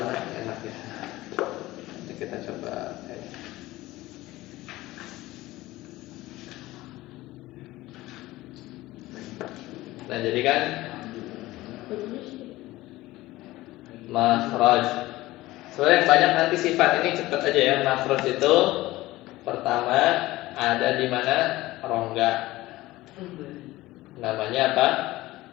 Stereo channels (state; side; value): quieter; right; 17.9 dB